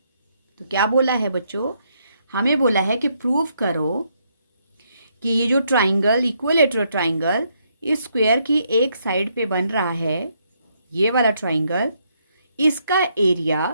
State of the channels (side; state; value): both; inverted; correlation -0.75